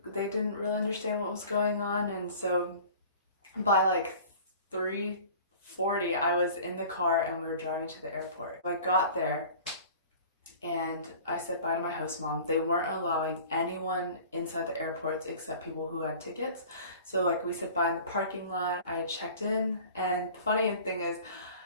really understand what was going on. And so by like 3:40 I was in the car and we were driving to the airport. I got there and I said bye to my host mom. They weren't allowing anyone inside the airports except people who had tickets. So like we said bye in the parking lot. I checked in, and the funny thing is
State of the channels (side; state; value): both; inverted; correlation -0.44